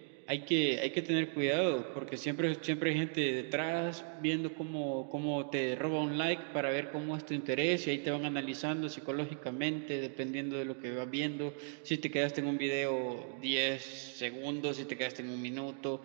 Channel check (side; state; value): left; silent; 53 dB below the other